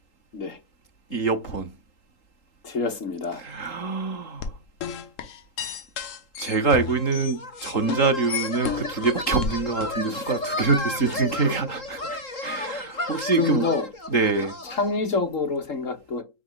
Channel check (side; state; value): right; late; 3.8 ms